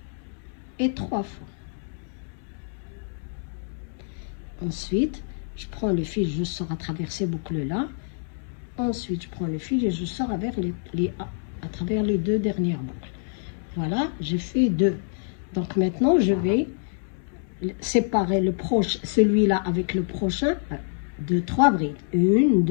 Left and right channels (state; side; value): silent; right; 61 dB below the other